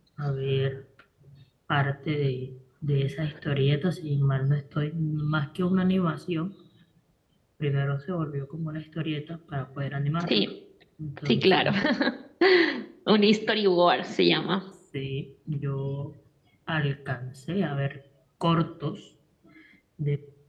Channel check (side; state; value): both; identical; correlation 1.00